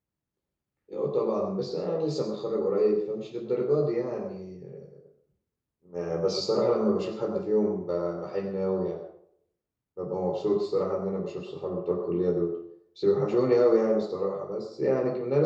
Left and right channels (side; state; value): both; identical; correlation 1.00